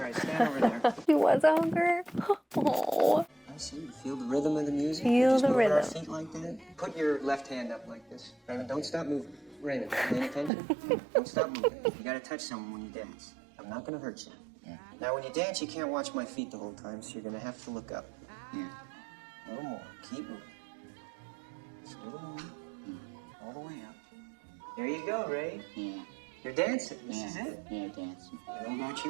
right, stand over there. He was a hooker. Oh. I see. You feel the rhythm of the music. Feel Just the move our rhythm. feet like that. Put your left hand up like this. Raymond, don't stop moving. Raymond, paying attention? Don't stop moving. You gotta touch someone when you dance. I'm not gonna hurt you. Yeah. Now, when you dance, you can't watch my feet the whole time, so you're gonna have to look up. Yeah. A little more. Keep moving. Just a little more. All the way up. There you go, Ray. Yeah. You're dancing. This is it. Yeah, dancing. I don't know about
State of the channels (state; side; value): drops out; left; at 10.5 s